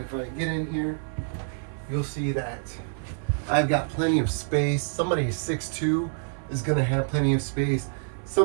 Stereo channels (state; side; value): silent; left; 59 dB below the other